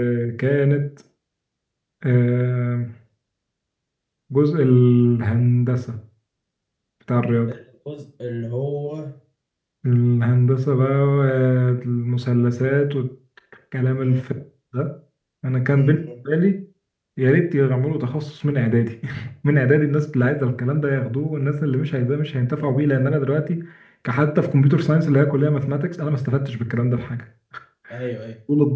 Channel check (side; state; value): both; identical; correlation 1.00